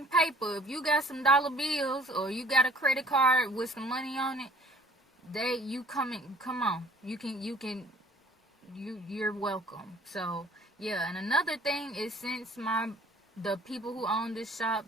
paper, if you got some dollar bills, or you got a credit card with some money on it, come on. You're welcome. So yeah, and another thing is, since the people who own this shop,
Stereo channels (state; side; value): normal; both; correlation 0.54